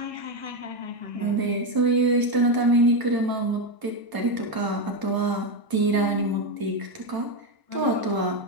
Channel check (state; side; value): late; left; 1.0 ms